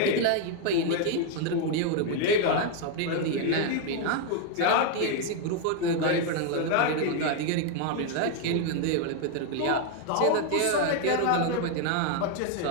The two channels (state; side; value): different; both; correlation 0.00